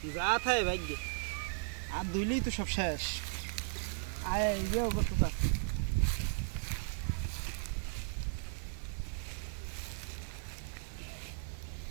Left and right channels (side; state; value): left; silent; 54 dB below the other